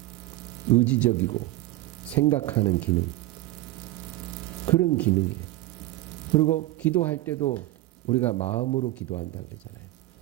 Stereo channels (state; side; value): quieter; left; 17.2 dB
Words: 의지적이고 생각하는 기능, 그런 기능이에요. 그리고 기도할 때도 우리가 마음으로 기도한다 그러잖아요.